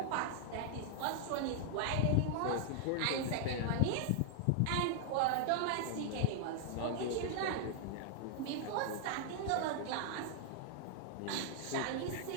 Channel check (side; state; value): both; different; correlation 0.00